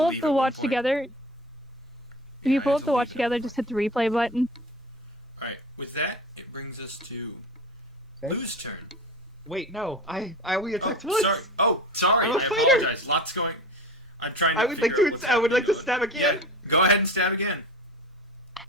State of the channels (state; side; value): normal; both; correlation 0.33